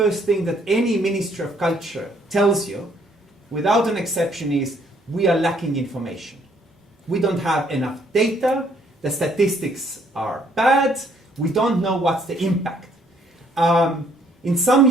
thing that any Ministry of Culture tells you, without an exception, is we are lacking information. We don't have enough data, the statistics are bad, we don't know what's the impact. In some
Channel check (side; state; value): both; normal; correlation 0.65